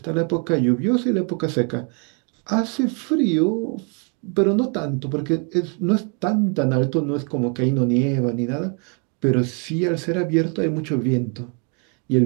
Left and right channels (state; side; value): quieter; left; 36.4 dB